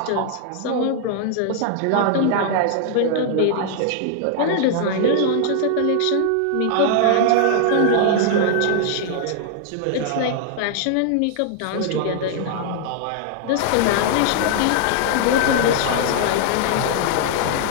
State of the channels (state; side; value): different; both; correlation -0.01